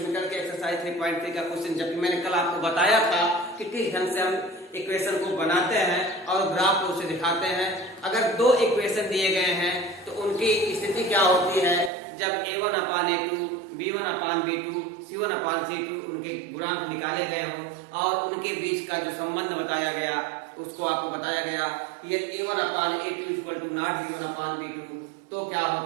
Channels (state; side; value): drops out; left; at 11.9 s